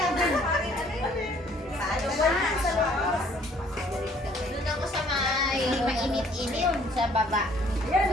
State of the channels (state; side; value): normal; both; correlation 0.60